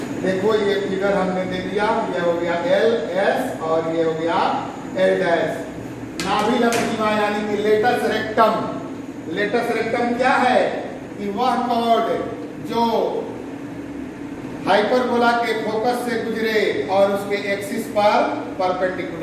देखो ये फिगर हमने दे दिया, ये हो गया LS और ये हो गया L डैश। नाभिलंब सीमा यानी कि लेटस रेक्टम। लेटस रेक्टम क्या है कि वह कॉर्ड जो हाइपरबोला के फोकस से गुजरे और उसके एक्सिस पर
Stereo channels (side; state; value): both; identical; correlation 1.00